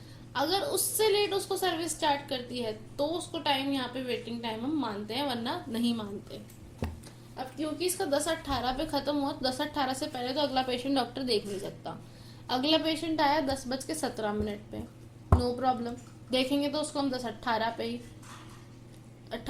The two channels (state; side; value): identical; both; correlation 1.00